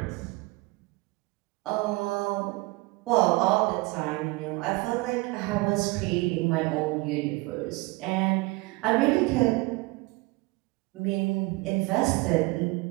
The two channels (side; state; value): left; quieter; 23.3 dB